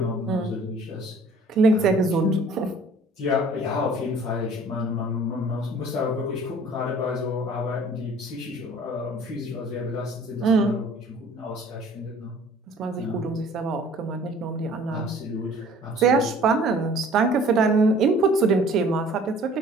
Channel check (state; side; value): normal; both; correlation 0.51